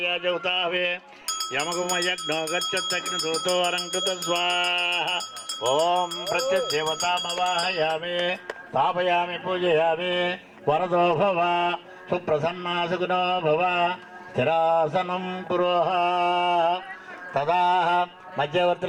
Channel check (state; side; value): identical; both; correlation 1.00